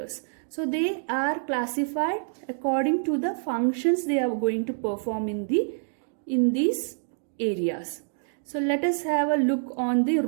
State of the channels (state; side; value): silent; left; digital silence